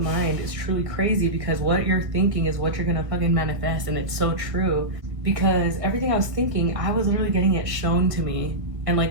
mind is truly crazy, because what you're thinking is what you're gonna fucking manifest. And it's so true, because everything I was thinking, I was literally getting it shown to me and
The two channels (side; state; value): left; late; 1.6 ms